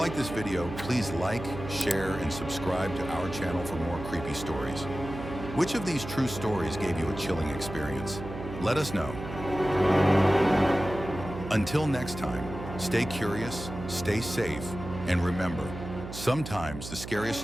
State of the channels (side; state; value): right; noise; hum, 10 dB below the sound